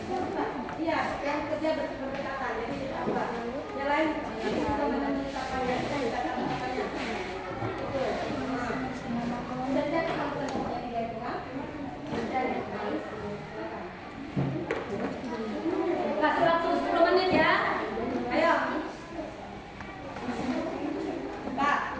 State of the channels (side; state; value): both; identical; correlation 1.00